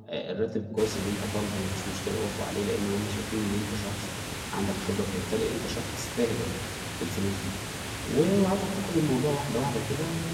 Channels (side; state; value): both; identical; correlation 1.00